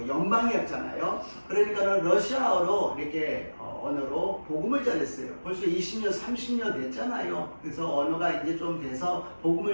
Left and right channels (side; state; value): both; inverted; correlation -1.00